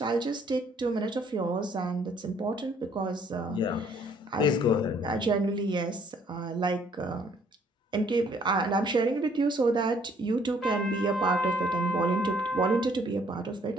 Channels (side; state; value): both; normal; correlation 0.63